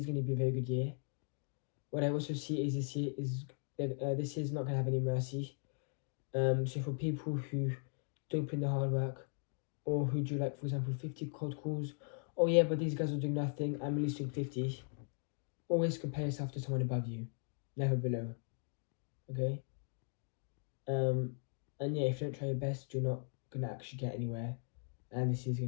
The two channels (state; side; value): silent; right; 52 dB below the other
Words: going to be a very good year. What I also see is this year is not going to have any mercy. So for people who don't put in the hard work, or who do, like, for example, 50 cold calls, oh yeah, but these guys are doing nothing, I'm at least doing 50. Always compare yourself to someone above you, never below. Okay? And yeah, if you don't try your best, you're not gonna actually get anywhere. And this is